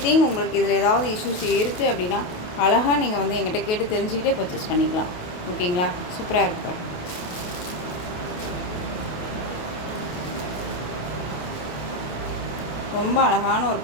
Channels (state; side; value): late; right; 28 ms